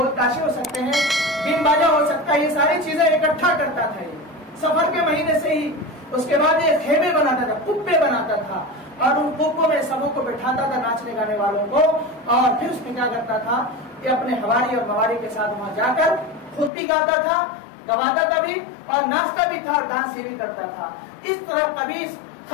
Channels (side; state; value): right; drops out; at 16.7 s